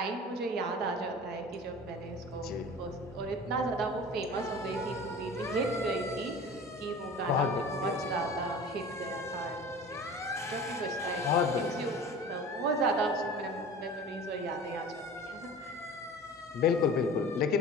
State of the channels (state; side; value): normal; both; correlation 0.39